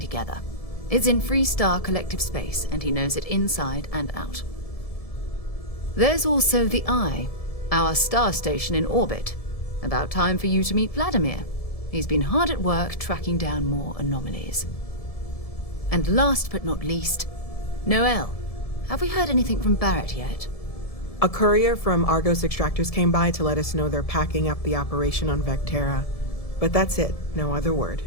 It's in Freestar Collective Space, and he knows it inside and out. There's also the Eye, our star station in orbit. About time for you to meet Vladimir. He's been hard at work tracking down more anomalies. And last but not least, Noel. Have we heard anything from Barrett yet? A courier from Argos Extractors came by to let us know they're packing up the operation on Vectera. But that's it, no other word.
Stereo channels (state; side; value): late; right; 1.7 ms